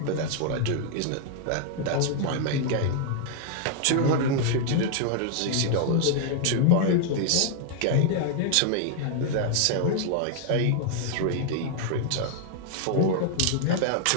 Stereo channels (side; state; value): both; different; correlation 0.00